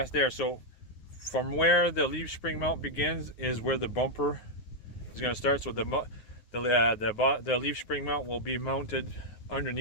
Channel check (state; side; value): late; right; 9.5 ms